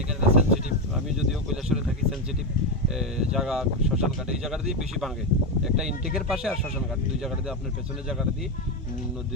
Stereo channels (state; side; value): normal; both; correlation 0.10